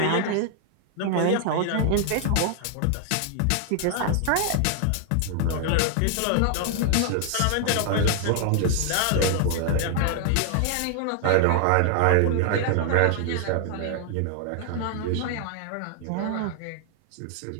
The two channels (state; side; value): different; both; correlation 0.00